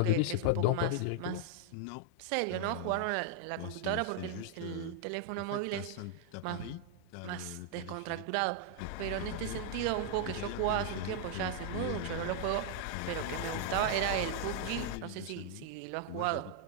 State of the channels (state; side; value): different; both; correlation 0.00